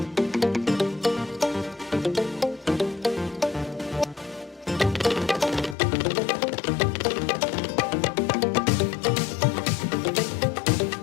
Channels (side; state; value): right; drops out; at 5.8 s